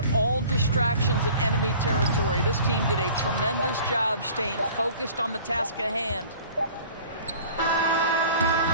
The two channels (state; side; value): inverted; both; correlation -0.47